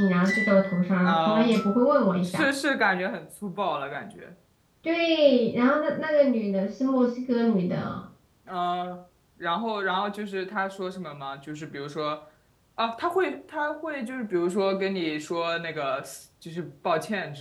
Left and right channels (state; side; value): identical; both; correlation 1.00